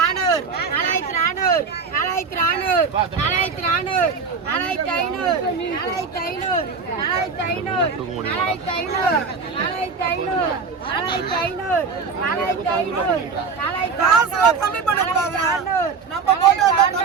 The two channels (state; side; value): quieter; left; 5.1 dB